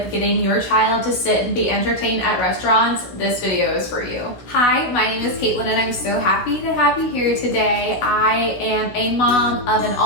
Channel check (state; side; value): late; right; 16 ms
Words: getting your child to sit and be entertained at restaurants, this video is for you. Hi, my name is Caitlin and I'm so happy to have you here today. I am a mom of an